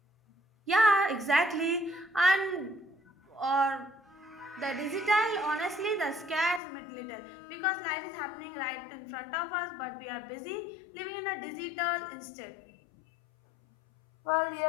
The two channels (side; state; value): right; drops out; at 6.6 s